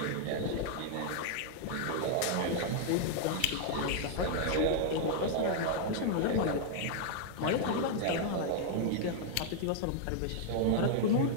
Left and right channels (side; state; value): both; different; correlation 0.00